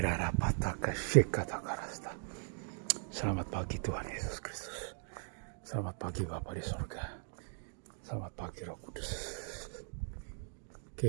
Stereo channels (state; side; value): silent; left; 52 dB below the other